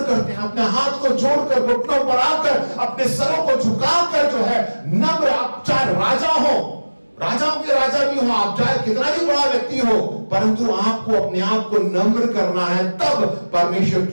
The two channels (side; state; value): both; inverted; correlation -1.00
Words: करते हैं, अपने हाथ को जोड़कर, घुटनों पर आकर, अपने सरों को झुकाकर जो है नम्र। आप चाहे राजा हो, राजाओं के राजा भी हो, आप चाहे कितना भी बड़ा व्यक्ति हो, परंतु आपको अपने आप को नम्र करना है। तब परमेश्वर